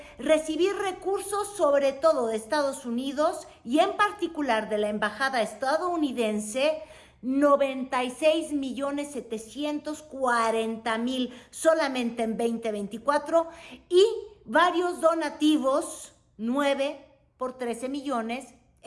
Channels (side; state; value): both; identical; correlation 1.00